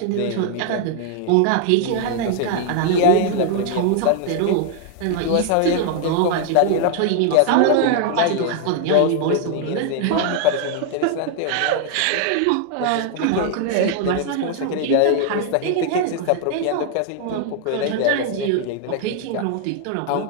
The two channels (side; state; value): both; different; correlation 0.00